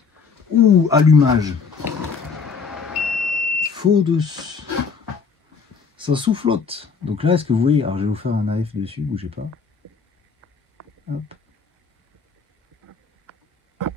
Ouh, allumage. Faux de. Ça soufflote. Donc là, est-ce que vous voyez? Alors je vais vous faire un AF dessus, bougez pas. Hop.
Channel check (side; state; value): right; quieter; 5.4 dB